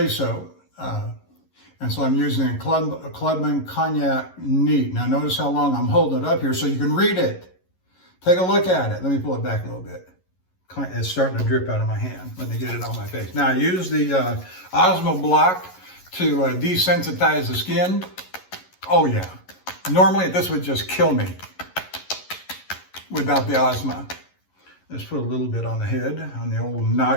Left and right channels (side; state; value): right; late; 11 ms